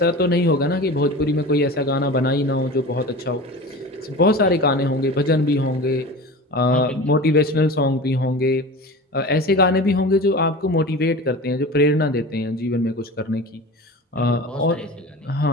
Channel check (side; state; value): both; normal; correlation 0.33